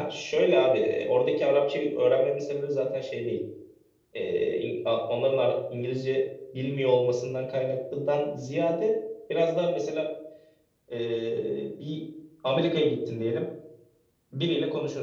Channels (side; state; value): both; identical; correlation 1.00